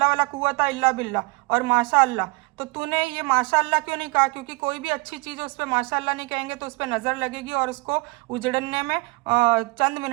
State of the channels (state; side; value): quieter; left; 26.9 dB